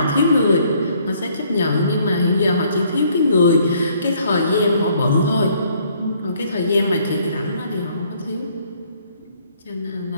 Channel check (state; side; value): inverted; both; correlation -0.64